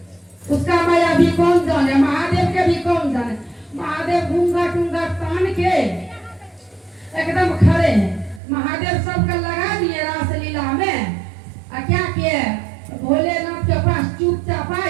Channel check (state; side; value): drops out; left; at 8.4 s